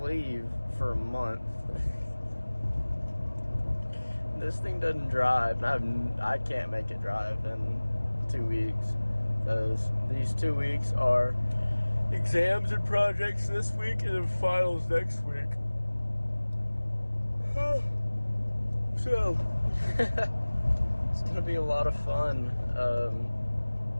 for a month. This thing doesn't drive, and I can't make it drive in 2 weeks, because these 2 weeks are exams and projects this week and then finals next week. So it's gonna be a lot of fun.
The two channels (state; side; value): inverted; both; correlation -1.00